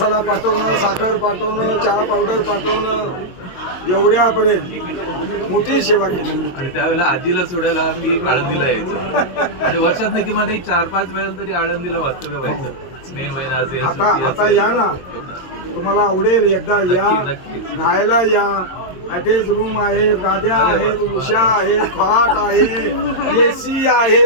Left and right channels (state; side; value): late; right; 22 ms